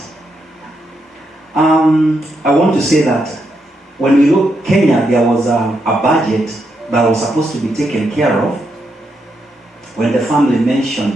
I want to say that when we look Kenya, there was a budget that was supposed to be taken care of. When the family mentioned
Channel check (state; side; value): normal; both; correlation 0.81